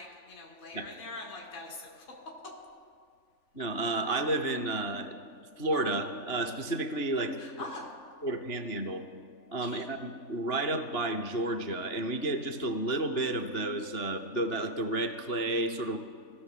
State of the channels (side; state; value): right; late; 3.5 ms